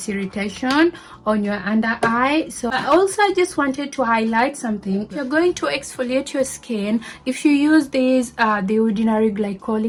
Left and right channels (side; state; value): both; identical; correlation 1.00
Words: irritation on your under eye. So also I just wanted to highlight something. If you're going to exfoliate your skin, if you use this the ordinary